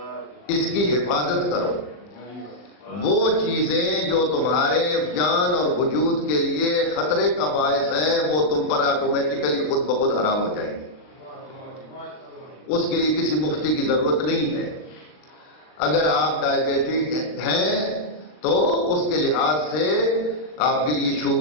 اس کی حفاظت کرو. وہ چیزیں جو تمہارے جان اور وجود کے لیے خطرے کا باعث ہیں وہ تم پر آٹومیٹیکلی خود بخود حرام ہو جائیں گے. اس کے لیے کسی مفتی کی ضرورت نہیں ہے. اگر آپ ڈائبیٹک ہیں تو اس کے لحاظ سے آپ کے لیے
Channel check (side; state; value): right; late; 39 ms